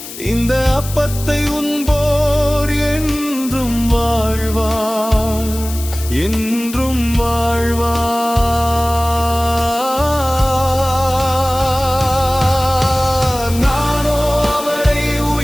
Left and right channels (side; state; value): left; noise; hiss, 12 dB below the sound